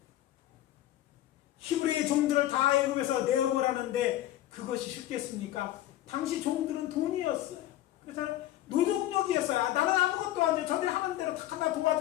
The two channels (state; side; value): quieter; right; 14.1 dB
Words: 히브리의 종들을 다 애굽에서 내어보라는데 그것이 쉽겠습니까? 당시 종들은 돈이었어요. 그래서 노동력이었어요. 나는 아무것도 안 돼. 저들이 하는 대로 다 하나